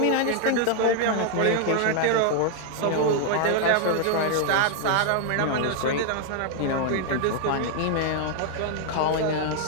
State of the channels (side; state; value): both; different; correlation 0.00